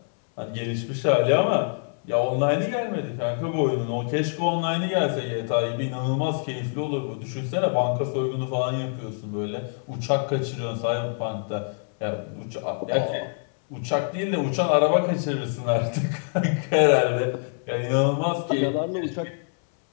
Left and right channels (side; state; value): right; silent; 60 dB below the other